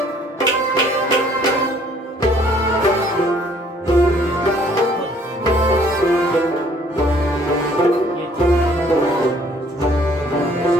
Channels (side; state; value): both; normal; correlation 0.59